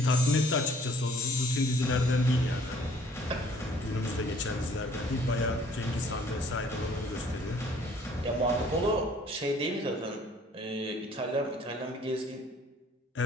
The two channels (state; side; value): normal; both; correlation 0.57